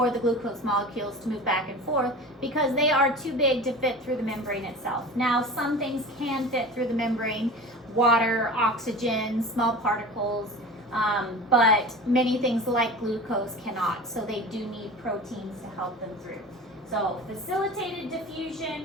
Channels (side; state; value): both; normal; correlation 0.35